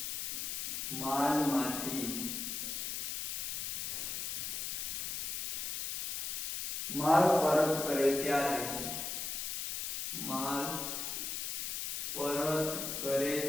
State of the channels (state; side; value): noise; left; hiss, 2 dB below the sound